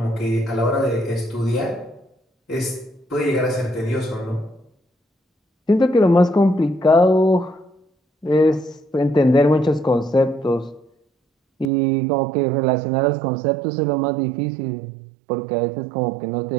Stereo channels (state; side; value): drops out; left; at 11.7 s